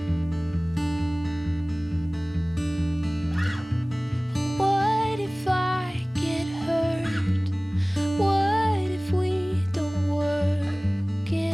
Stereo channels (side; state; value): both; normal; correlation 0.98